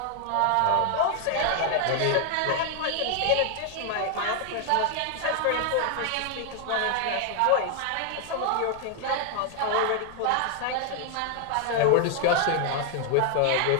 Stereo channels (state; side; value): different; both; correlation 0.00